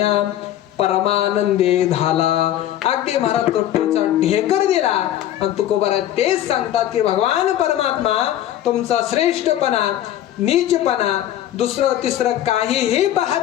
परमानंदे झाला. अगदी महाराज तृप्तीचा ढेकर दिला. आणि तुकोबारा तेच सांगतात की भगवान परमात्मा तुमचा श्रेष्ठपणा, नीचपणा, दुसरं तिसरं काहीही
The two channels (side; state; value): right; quieter; 12.3 dB